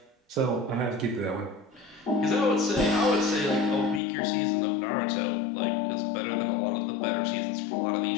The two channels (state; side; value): drops out; right; at 4.0 s